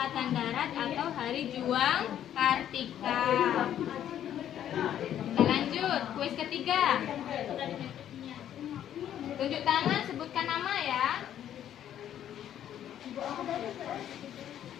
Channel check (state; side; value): quieter; right; 10.7 dB